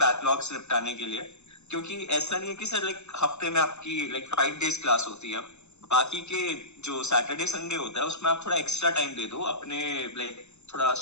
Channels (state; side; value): late; right; 0.82 ms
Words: निपटाने के लिए। क्योंकि ऐसा नहीं है कि सर लाइक हफ्ते में आपकी लाइक 5 days क्लास होती है, बाकी के जो सैटरडे संडे होता है उसमें आप थोड़ा एक्स्ट्रा टाइम दे दो अपने लाइक थोड़ा